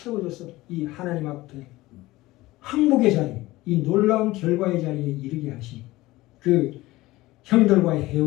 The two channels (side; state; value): right; quieter; 18.6 dB